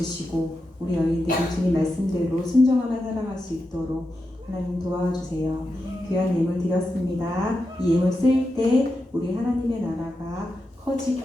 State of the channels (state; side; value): normal; both; correlation 0.89